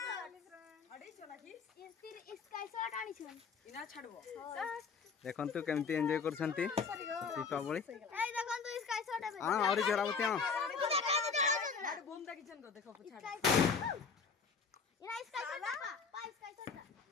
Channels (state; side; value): quieter; right; 5.5 dB